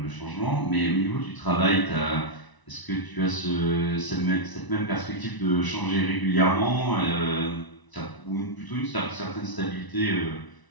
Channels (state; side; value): late; right; 1.0 ms